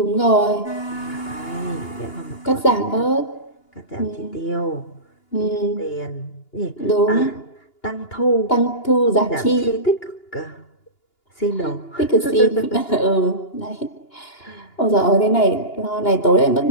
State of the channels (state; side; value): late; right; 2.9 ms